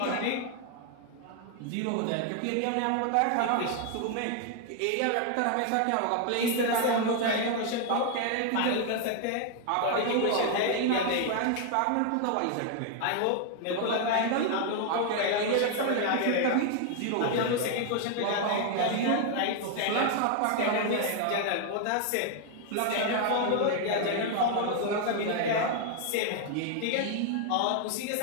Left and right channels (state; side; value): different; both; correlation 0.00